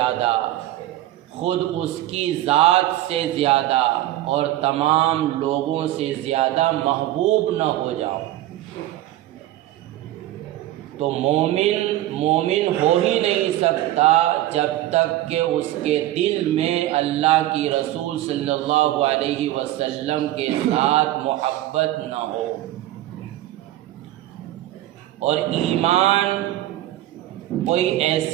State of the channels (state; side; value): quieter; left; 14.6 dB